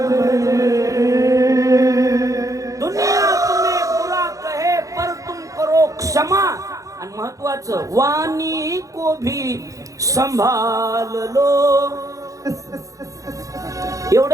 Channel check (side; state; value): left; late; 0.16 ms